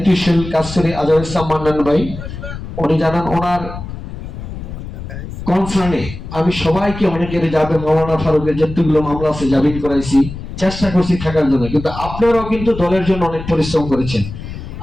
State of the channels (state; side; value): noise; left; rumble, 10 dB below the sound